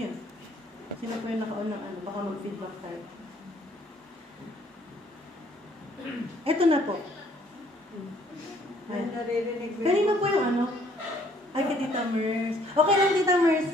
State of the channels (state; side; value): normal; both; correlation 0.62